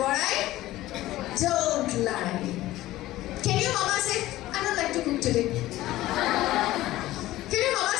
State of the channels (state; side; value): quieter; right; 16.0 dB